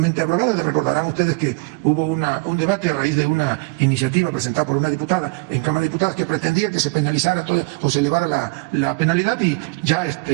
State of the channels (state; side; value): quieter; left; 28.9 dB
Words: aprobada. Recordarán ustedes que hubo un debate a raíz de una iniciativa presentada por una diputada en Cámara de Diputados que pretendía que se penalizara o se elevara la penalidad, y ya